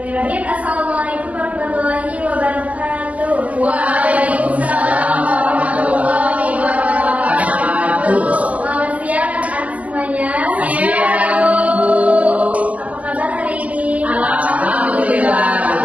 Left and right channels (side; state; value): left; late; 0.068 ms